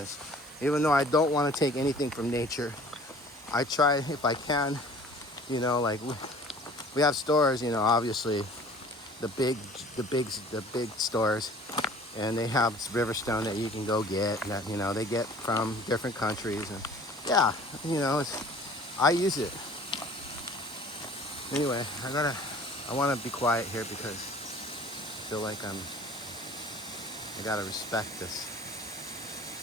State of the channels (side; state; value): both; normal; correlation 0.49